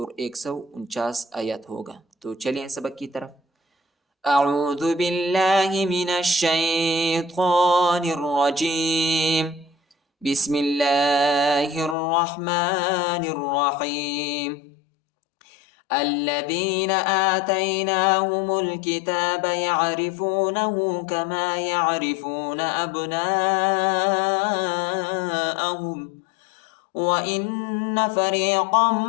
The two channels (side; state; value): right; drops out; at 12.0 s